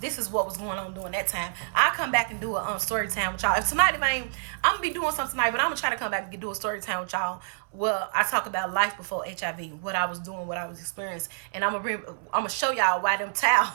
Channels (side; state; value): left; silent; 60 dB below the other